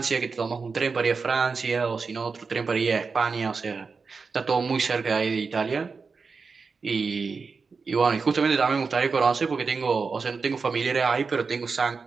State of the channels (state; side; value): quieter; left; 4.8 dB